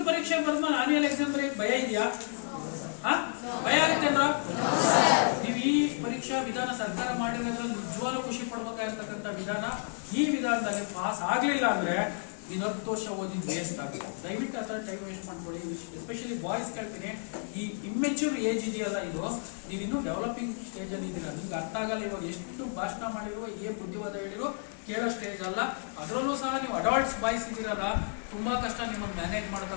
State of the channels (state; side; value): silent; right; 57 dB below the other